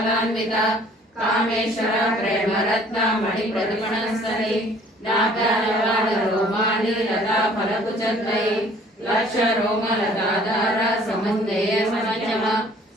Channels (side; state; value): both; normal; correlation 0.55